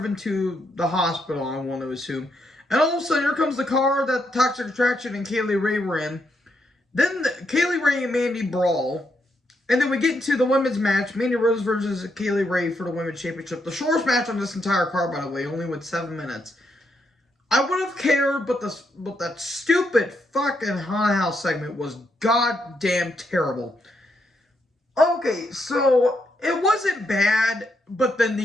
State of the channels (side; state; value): both; normal; correlation 0.79